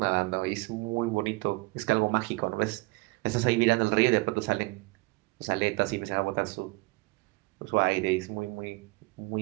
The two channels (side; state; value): left; quieter; 24.7 dB